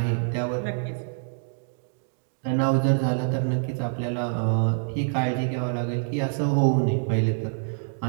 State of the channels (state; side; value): silent; left; digital silence